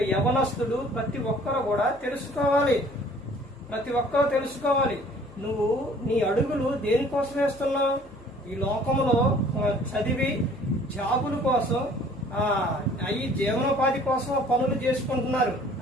యవనస్తుడు, ప్రతి ఒక్కరు కూడా తెలుసుకోవాలి, నువ్వు నీ అడుగులు దేనికోసం వేస్తున్నావు? ఈ లోకంలో చదివి జాబుల కోసం, అవి జీవనోపాధి కోసం పనులు చేసుకుంటున్నారు,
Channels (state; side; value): noise; left; hum, 25 dB below the sound